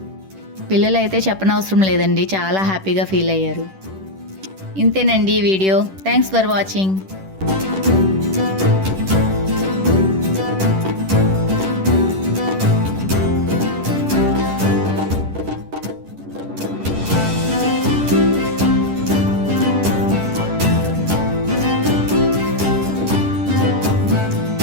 పిల్లలైతే చెప్పనవసరం లేదండి, చాలా హ్యాపీగా ఫీల్ అయ్యారు. ఇంతేనండి ఈ వీడియో. Thanks for watching.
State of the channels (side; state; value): left; late; 10 ms